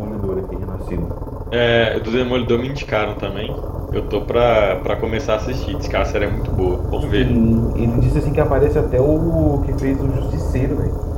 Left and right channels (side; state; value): both; identical; correlation 1.00